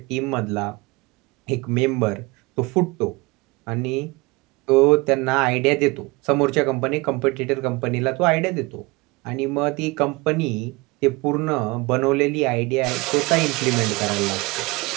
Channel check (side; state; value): left; quieter; 24.5 dB